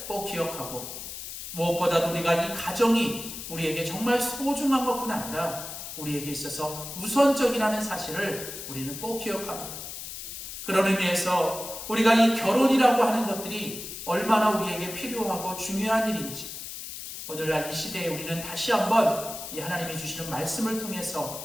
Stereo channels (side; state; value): left; noise; hiss, 9 dB below the sound